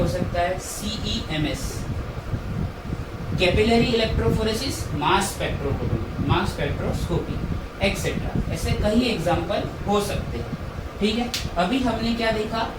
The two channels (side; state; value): both; identical; correlation 1.00